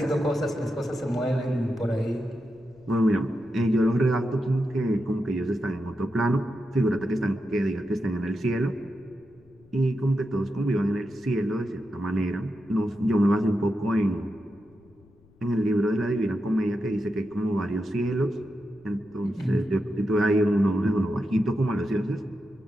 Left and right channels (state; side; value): noise; left; rumble, 29 dB below the sound